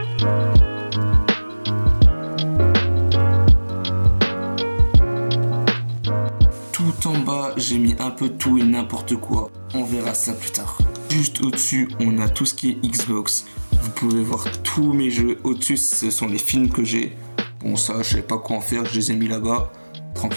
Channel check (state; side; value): inverted; both; correlation -1.00